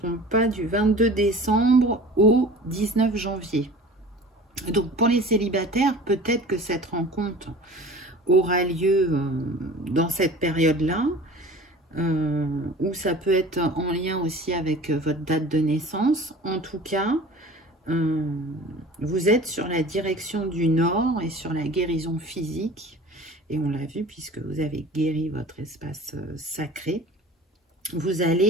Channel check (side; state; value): both; normal; correlation 0.41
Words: pas, du 22 décembre au 19 janvier. Donc, pour les célibataires, peut-être que cette rencontre aura lieu dans cette période-là. Ou ça peut être en lien aussi avec votre date de naissance. En tout cas, vous êtes sur la direction du nord et sur la guérison physique. Et on l'a vu puisque vous avez guéri votre espace sacré. Vous